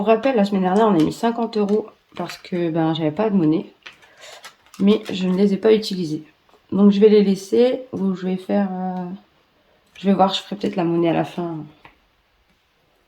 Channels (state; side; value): identical; both; correlation 1.00